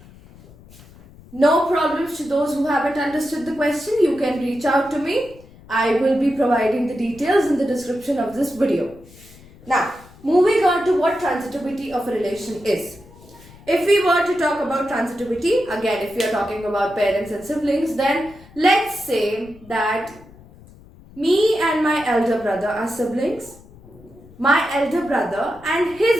No problems to those who haven't understood the question. You can reach out to me. I will be providing the details in the description of this video. Now, moving on to what transitivity of a relation is. If we were to talk about transitivity, again, if we are talking about parents and siblings, then let's say that me and my elder brother are siblings. My elder brother and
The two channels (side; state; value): left; noise; rumble, 23 dB below the sound